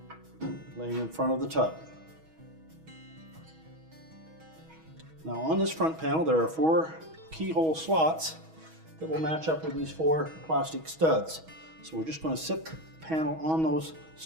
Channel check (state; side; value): late; left; 6.2 ms